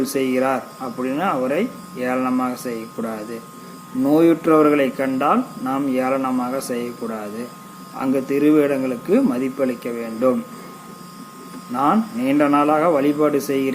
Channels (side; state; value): both; identical; correlation 1.00